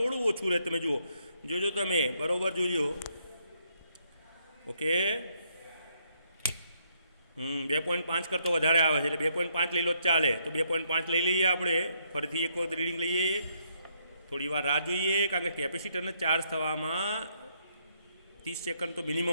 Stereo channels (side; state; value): both; inverted; correlation -0.73